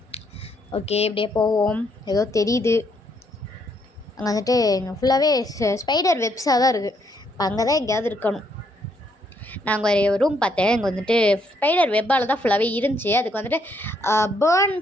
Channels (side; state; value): both; normal; correlation 0.72